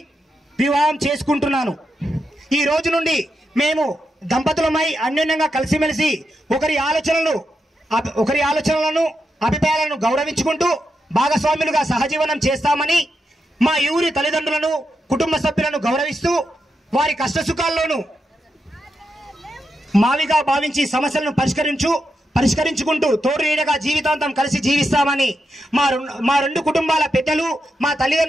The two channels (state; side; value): normal; both; correlation 0.85